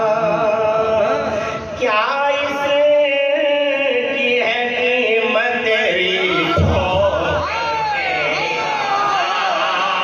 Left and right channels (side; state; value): both; identical; correlation 1.00